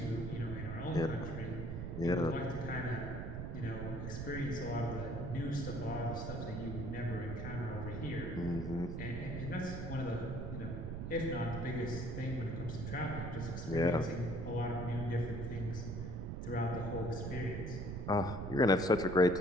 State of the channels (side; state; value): right; noise; rumble, 4 dB below the sound